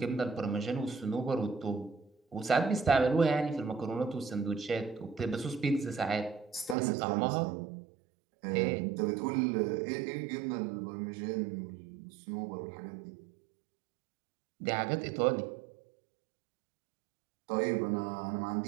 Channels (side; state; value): left; drops out; at 6.8 s